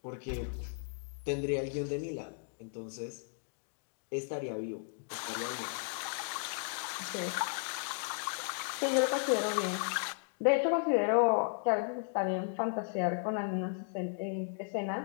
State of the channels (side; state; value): right; silent; digital silence